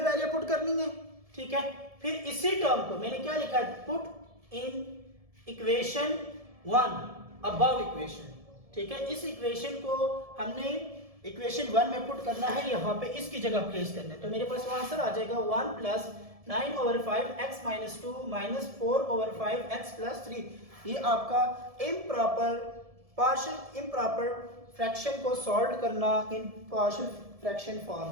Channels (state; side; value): late; left; 1.7 ms